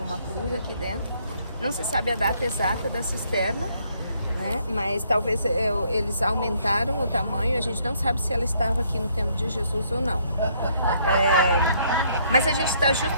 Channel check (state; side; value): inverted; both; correlation -0.68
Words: uma cruz aqui dentro. Não se sabe a data exata da cisterna, né? Mas talvez eles aumentaram o tamanho, a gente não sabe se ela estava aqui no tempo de Jesus ou não. Mas a gente está